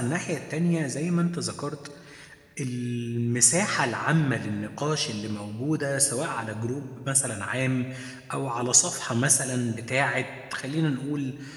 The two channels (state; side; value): identical; both; correlation 1.00